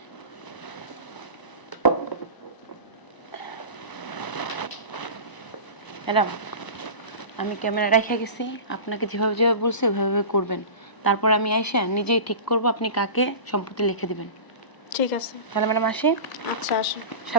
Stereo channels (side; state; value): right; late; 1.0 ms